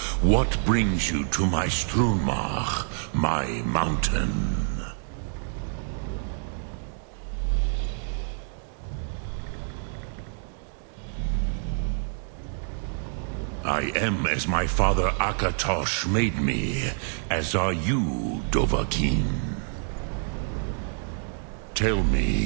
What brings you to my Strunmach, my mountain? I am as my father Akatosh made me, as are you, Dovahkiin. Tell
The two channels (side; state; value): left; silent; 57 dB below the other